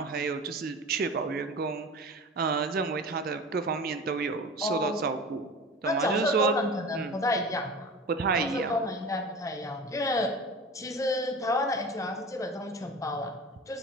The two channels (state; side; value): normal; both; correlation 0.35